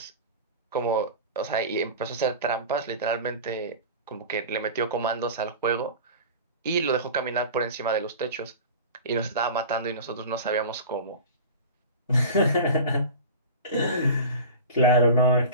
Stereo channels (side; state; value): both; inverted; correlation -0.34